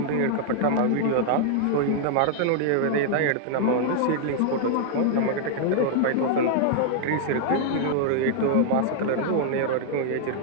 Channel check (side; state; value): both; different; correlation 0.00